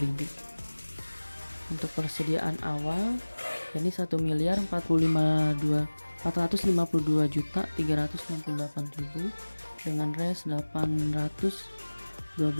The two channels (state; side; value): inverted; both; correlation -1.00